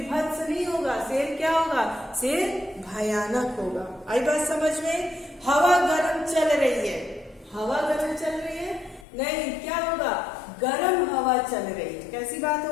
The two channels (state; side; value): drops out; right; at 9.1 s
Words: नहीं होगा, शेर क्या होगा, शेर भयानक होगा। आई बात समझ में। हवा गर्म चल रही है, हवा गर्म चल रही है नहीं, क्या होगा, गर्म हवा चल रही है। कैसी बात